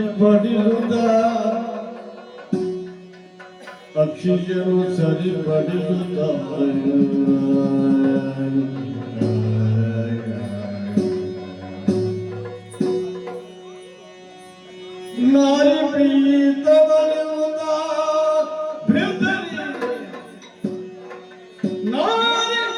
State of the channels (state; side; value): identical; both; correlation 1.00